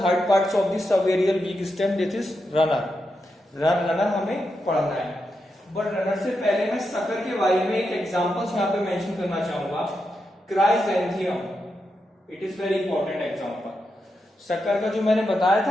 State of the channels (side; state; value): both; normal; correlation 0.86